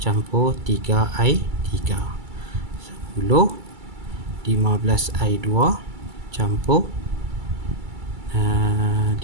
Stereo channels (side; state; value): left; late; 2.3 ms